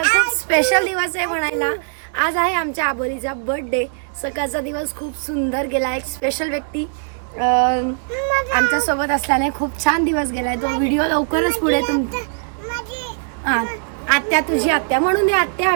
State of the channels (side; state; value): left; silent; digital silence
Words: खूप स्पेशल दिवस आहे म्हणायला। आज आहे आमच्या आबोलीचा बर्थडे। सकाळचा दिवस खूप सुंदर गेला। एक स्पेशल व्यक्ती आमच्या सोबत असल्याने खूप छान दिवस गेलाय। तो व्हिडिओ लवकरच पुढे आत्या तुझी आत्या म्हणून दे। आत्या